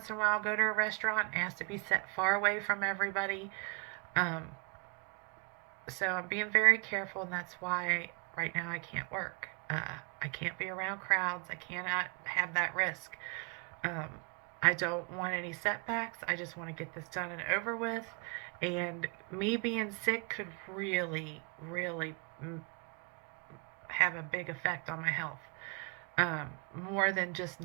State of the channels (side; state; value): left; quieter; 34.9 dB